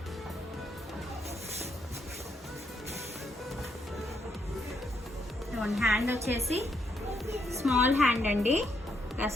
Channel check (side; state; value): both; normal; correlation 0.76